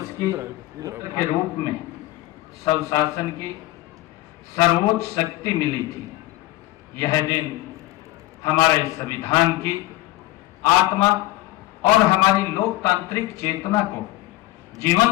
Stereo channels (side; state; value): right; quieter; 17.6 dB